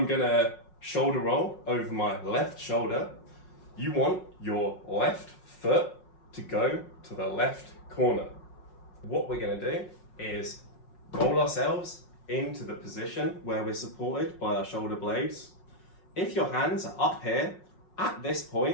going to shoulder roll over my left shoulder, you want your left foot to go to the left corner. What we're going to do is roll ourselves into the position where we're supported by our shoulder blades. If your hands are up here, at this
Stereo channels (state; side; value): late; right; 5.5 ms